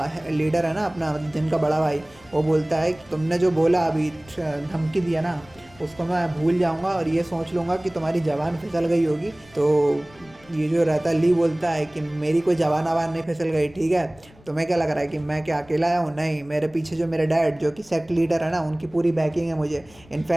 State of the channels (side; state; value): left; noise; rumble, 26 dB below the sound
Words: लीडर है ना अपना, मतलब जिनका बड़ा भाई, वो बोलता है कि तुमने जो बोला अभी धमकी दिया ना उसको मैं भूल जाऊँगा और ये सोच लूँगा कि तुम्हारी ज़बान फिसल गई होगी। तो ये जो रहता है ली बोलता है कि मेरी कोई जवान आवान नहीं फिसल गई, ठीक है। तुम्हें क्या लग रहा है कि मैं क्या अकेला आया हूँ? नहीं, मेरे पीछे जो मेरे डैड जो कि सेक्ट लीडर है ना उनकी पूरी बैकिंग है मुझे।